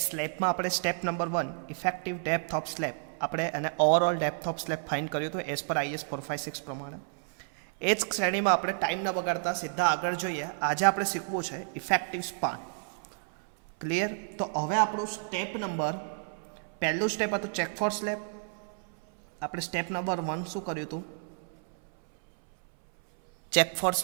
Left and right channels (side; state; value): left; silent; 57 dB below the other